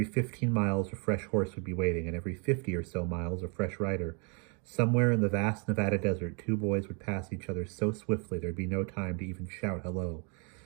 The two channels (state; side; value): quieter; left; 36.7 dB